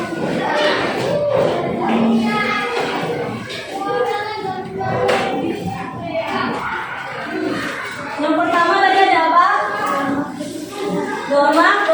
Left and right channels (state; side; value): identical; both; correlation 1.00